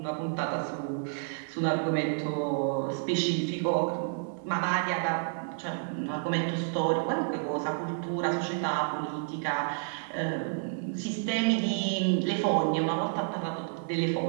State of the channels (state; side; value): silent; left; 57 dB below the other